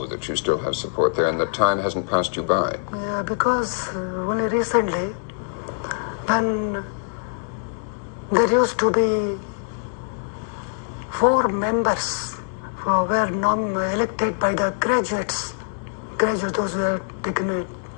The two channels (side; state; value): right; silent; digital silence